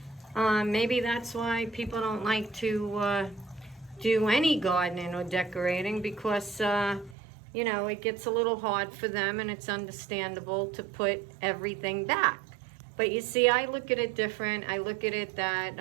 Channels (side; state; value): left; drops out; at 7.2 s